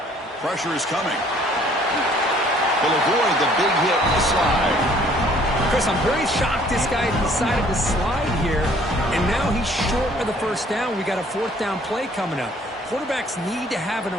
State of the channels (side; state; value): both; normal; correlation 0.58